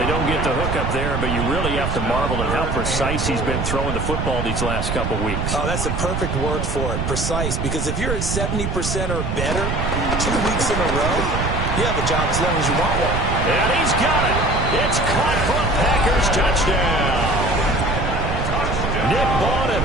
don't get the hook up there, but you really have to marvel at how precise he's been throwing the football these last couple weeks. Oh, that's the perfect word for it, precise, because if you're at 70% or better 2 weeks in a row, you have a job as long as you want one. And he's got it. It's caught for a Packers touchdown. Nick Bawden,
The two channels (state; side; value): noise; right; rumble, 1 dB below the sound